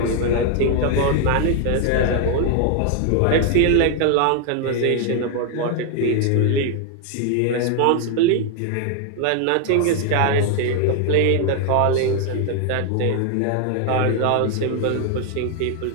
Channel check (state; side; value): different; both; correlation 0.01